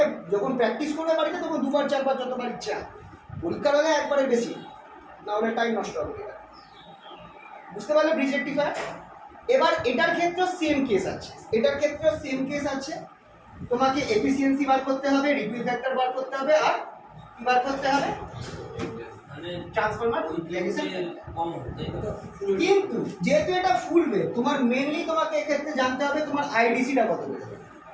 যখন প্র্যাকটিস করবে বাড়িতে তখন 2বার 4বার যতবার ইচ্ছা, পরীক্ষার হলে একবারে বেশি, না হলে টাইম নষ্ট হবে। বুঝতে পারলে ব্রিজ রেকটিফায়ার? এবার এটার ক্ষেত্রেও সেম কেস আছে, তোমাকে এফিসিয়েন্সি বার করতে হবে, রিপিল ফ্যাক্টর বার করতে হবে, আর কি বার করতে হবে, ট্রান্সফরমার ইমপ্লিমেন্টেশন। কিন্তু যেহেতু এটা ফুল ওয়েভ, তোমার মেনলি তোমাকে এক্ষেত্রে জানতে হবে তোমার আইডিসিটা কত বেরোবে।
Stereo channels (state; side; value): identical; both; correlation 1.00